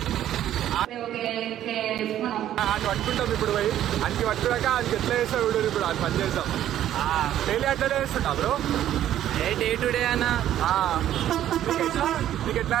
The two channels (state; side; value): quieter; left; 11.8 dB